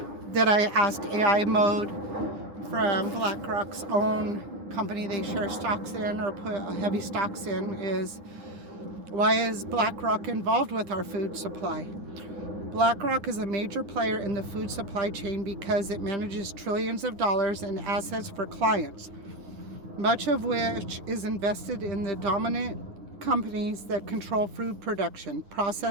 that I asked AI mode from BlackRock's own company they share stocks in or put heavy stocks in is, why is BlackRock involved with our food supply? BlackRock is a major player in the food supply chain because it manages trillions of dollars in assets for clients, much of which is invested in the dominant companies that control food production,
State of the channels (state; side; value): late; left; 10 ms